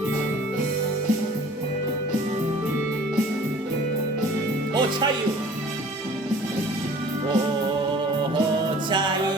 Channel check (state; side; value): normal; both; correlation 0.49